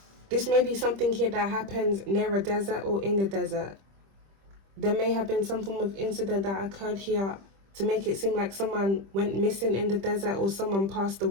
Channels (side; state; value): left; late; 25 ms